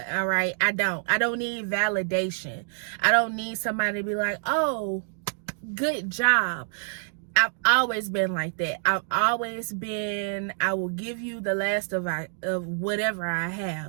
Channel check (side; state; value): left; silent; digital silence